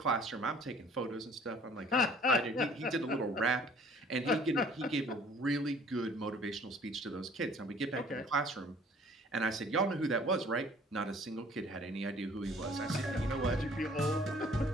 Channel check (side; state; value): both; normal; correlation 0.54